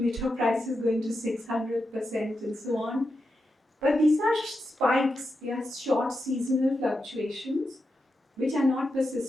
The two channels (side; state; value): both; normal; correlation 0.88